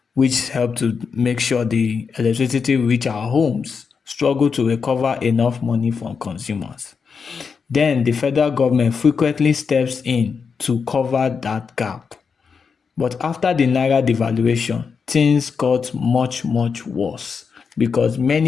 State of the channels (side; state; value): right; quieter; 5.7 dB